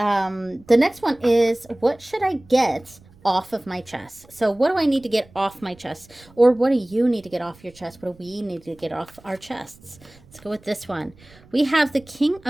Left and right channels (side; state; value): right; noise; rumble, 26 dB below the sound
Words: next one is, what should I get off of my chest? So what do I need to get off my chest? Or what do you need to get off your chest? What do we need to get off our chests? Let's go with this one. We have the King